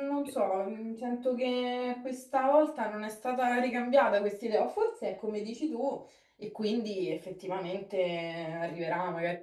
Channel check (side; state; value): both; identical; correlation 1.00